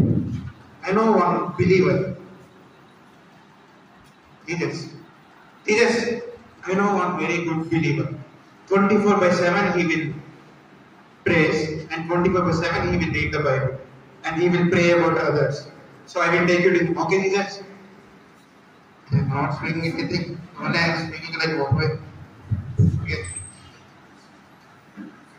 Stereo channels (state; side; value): identical; both; correlation 1.00